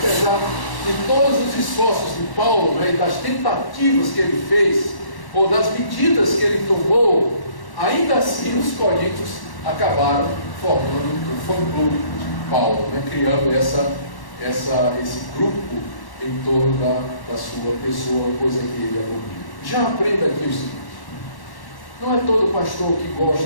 de todos os esforços de Paulo, né, e das tentativas que ele fez, ou das medidas que ele tomou, ainda assim os coríntios acabaram formando um fã-clube de Paulo, né, criando esse grupo em torno da sua pessoa, coisa que ele abomina. Já aprenda aqui o seguinte: não é todo pastor que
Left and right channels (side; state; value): right; late; 1.1 ms